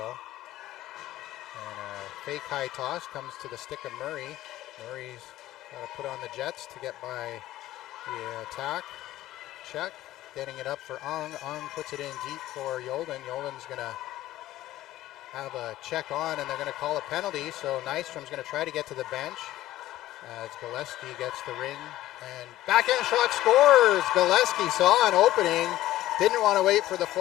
And a fake high toss comes to the stick of Murray. Murray's got to put on the Jets to get by the attack. Check, getting it up for Ung. Ung puts it in deep for Yolden. Yolden's going to have a check on, and they're going to call a penalty. So Nystrom's going to try to get to the bench as Gillespie gets the ring. And backhand shot, scores! Gillespie saw an opening. Didn't want to wait for the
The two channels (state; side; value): quieter; right; 14.9 dB